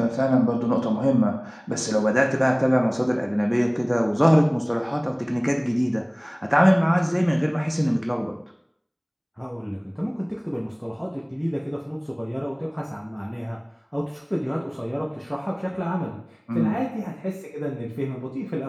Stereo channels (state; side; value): identical; both; correlation 1.00